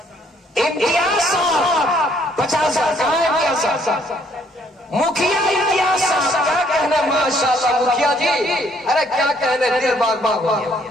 इम्तियाज साहब 50,000, कहाँ है इम्तियाज साहब? मुखिया इम्तियाज साहब, क्या कहने, माशाअल्लाह मुखिया जी, अरे क्या कहने, दिल बाग बाग हो गया।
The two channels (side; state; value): both; normal; correlation 0.65